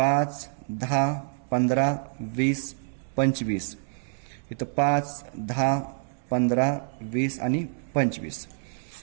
10, 15, 20, 25. इथं 5, 10, 15, 20 आणि 25.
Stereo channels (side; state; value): left; silent; 60 dB below the other